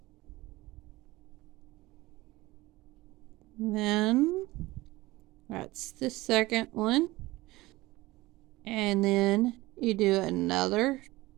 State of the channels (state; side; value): quieter; left; 19.6 dB